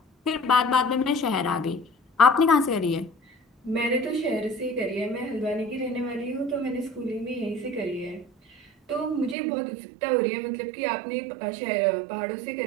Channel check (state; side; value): drops out; left; at 9.3 s